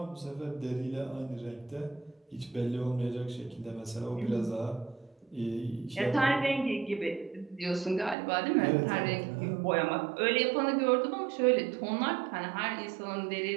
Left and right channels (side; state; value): left; drops out; at 8.2 s